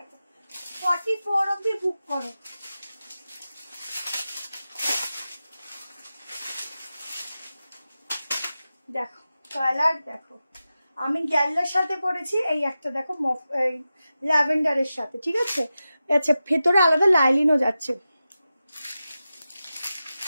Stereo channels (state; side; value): inverted; both; correlation -0.93